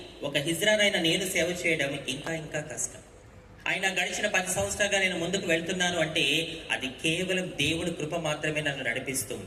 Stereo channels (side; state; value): both; identical; correlation 1.00